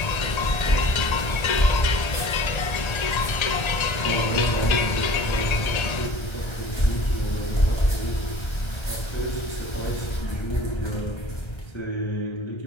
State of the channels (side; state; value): right; late; 1.3 ms